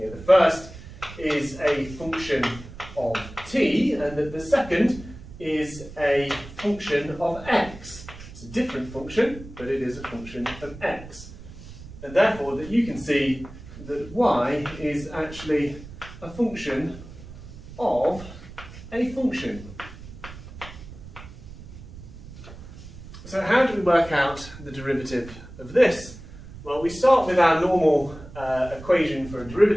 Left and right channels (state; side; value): noise; right; rumble, 15 dB below the sound